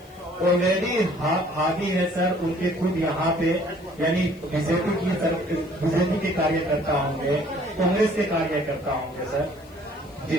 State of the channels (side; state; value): left; noise; hiss, 28 dB below the sound